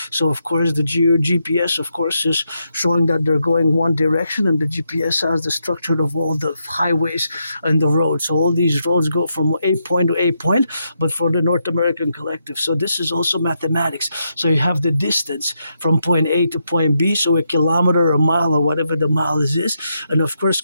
So of course the GPS, of course, is showing that they're going one direction, and the GPS has the structure of all the highways and the roads. So all these roads go from A point to A point, but for the North American Collective. So this is also mathematics. So you have the distance from point A to point B, so a kilometer, a mile, or whatever the mile is. And of course,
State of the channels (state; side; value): inverted; both; correlation -0.82